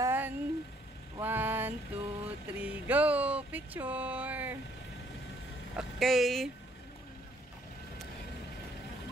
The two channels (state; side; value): normal; both; correlation 0.65